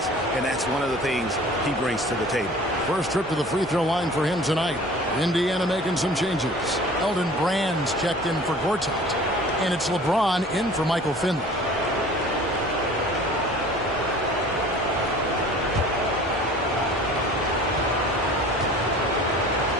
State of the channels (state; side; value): normal; both; correlation 0.45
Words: And that's one of the things he brings to the table. First trip to the free throw line for him tonight. Indiana making some changes. Elton Brand's checked in for Gortat. And it's LeBron in for Michael Finley.